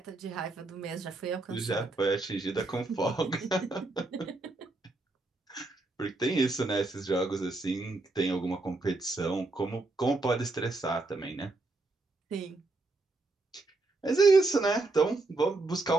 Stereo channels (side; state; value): left; quieter; 3.2 dB